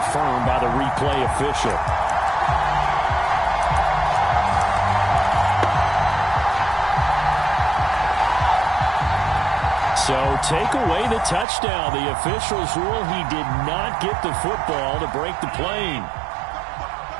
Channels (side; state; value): left; drops out; at 11.5 s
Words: by the replay official. So take away the touchdown. The officials rule he did not get the football to break the plane.